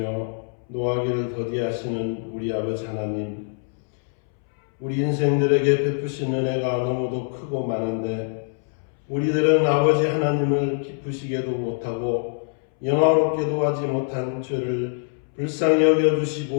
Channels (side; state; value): right; silent; 63 dB below the other